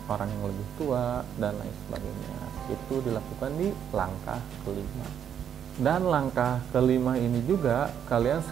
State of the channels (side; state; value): left; quieter; 8.8 dB